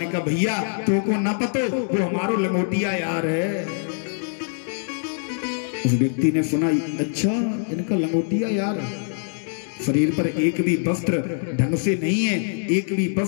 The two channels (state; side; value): silent; right; digital silence